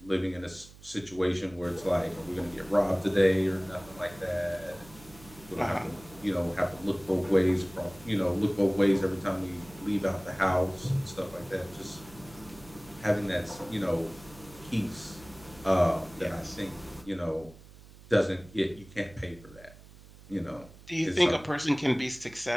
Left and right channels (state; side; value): noise; right; hum, 21 dB below the sound